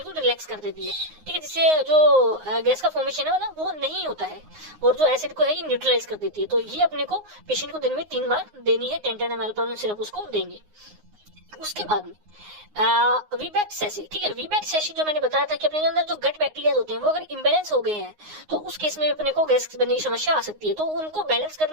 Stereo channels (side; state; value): left; late; 9.6 ms